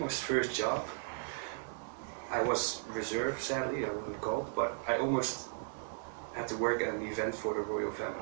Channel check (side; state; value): left; silent; digital silence